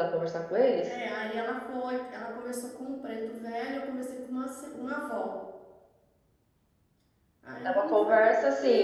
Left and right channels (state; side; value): identical; both; correlation 1.00